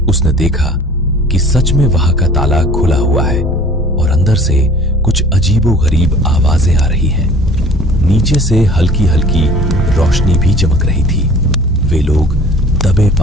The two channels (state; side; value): normal; both; correlation 0.49